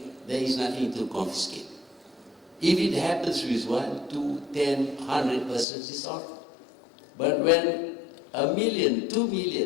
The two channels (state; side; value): drops out; right; at 5.7 s